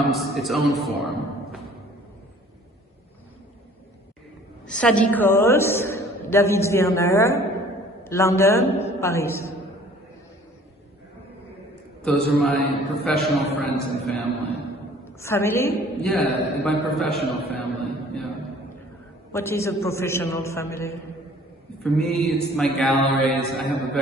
its own form. Sadie Coles, David Werner, London, Paris. Those are my professional friends and family. Family? Yeah, my professional family, yeah. What is a professional family? For me, it's my galleries. I have a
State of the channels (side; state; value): both; normal; correlation 0.52